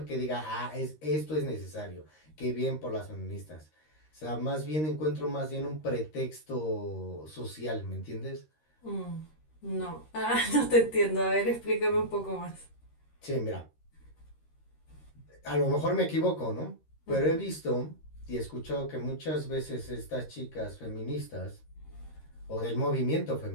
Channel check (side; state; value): right; late; 13 ms